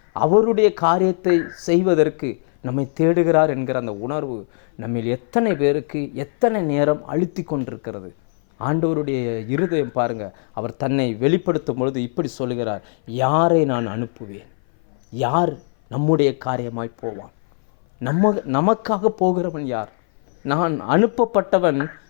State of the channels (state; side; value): silent; right; 59 dB below the other